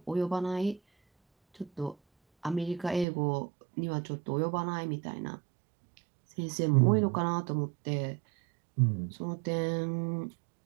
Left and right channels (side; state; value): left; drops out; at 3.1 s